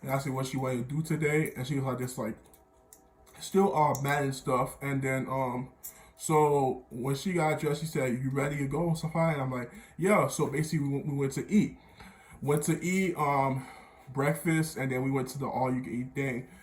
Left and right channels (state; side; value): identical; both; correlation 1.00